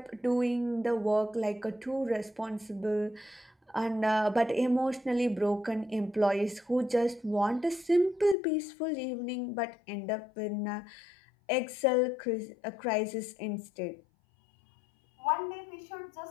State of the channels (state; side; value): drops out; right; at 8.3 s